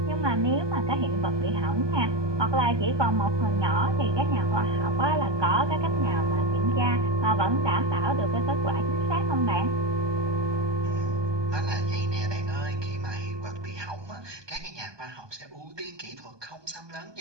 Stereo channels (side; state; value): left; late; 1.2 ms